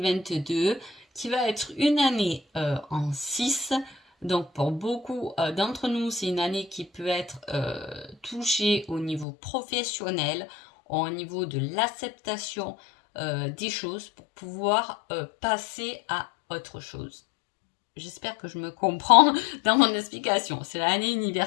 qui va être une année en 6. Donc pour beaucoup d'entre nous, c'est une année qui peut être touchée au niveau professionnel, au niveau de l'acceptation des choses pour pouvoir passer à autre chose. J'espère que je me comprends dans mon explication. C'est l'année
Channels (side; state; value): right; drops out; at 9.2 s